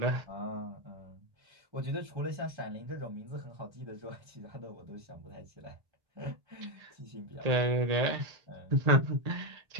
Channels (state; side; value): late; left; 1.8 ms